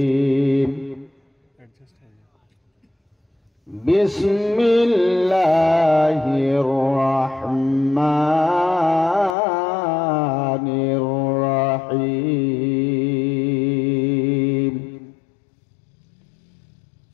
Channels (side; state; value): right; drops out; at 9.3 s